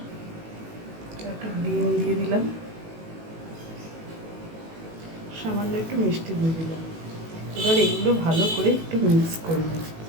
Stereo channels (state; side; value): late; left; 18 ms